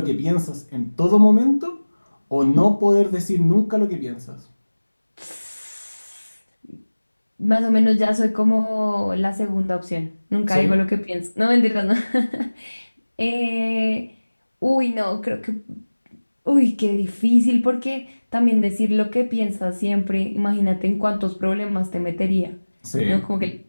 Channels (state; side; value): inverted; both; correlation -1.00